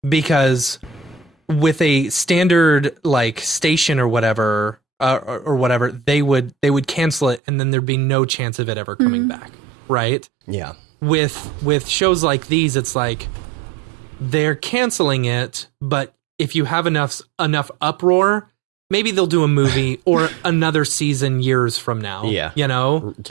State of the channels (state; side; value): drops out; left; at 7.4 s